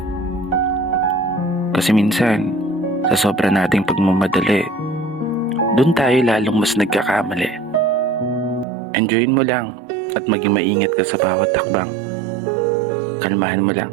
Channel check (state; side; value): drops out; left; at 8.7 s